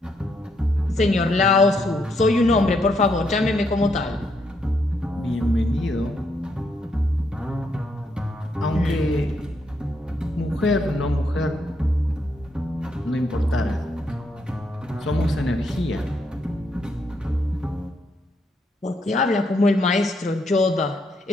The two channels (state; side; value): normal; both; correlation 0.76